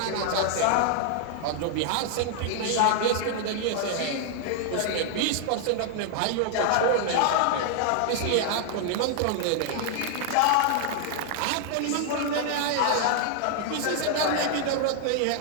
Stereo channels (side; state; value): both; different; correlation 0.00